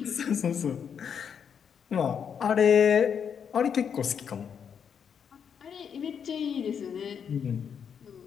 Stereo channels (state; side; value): quieter; right; 7.4 dB